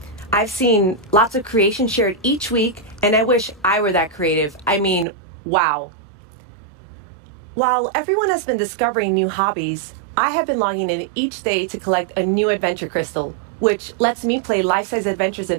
I've seen lots of creation shared each week, and I wish I were that creative. I mean, wow. While everyone has been discovering new hobbies, I have been logging in each day to collect a new adventure crystal, which lets me play life-size adventures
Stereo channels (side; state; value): left; drops out; at 5.1 s